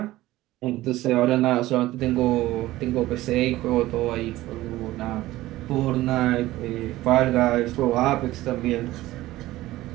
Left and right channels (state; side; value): quieter; left; 16.7 dB